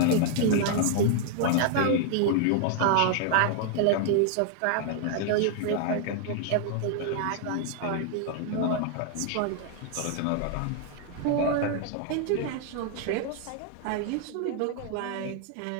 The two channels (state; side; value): different; both; correlation 0.00